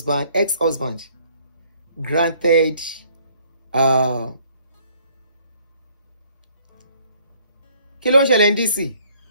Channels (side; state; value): both; inverted; correlation -0.62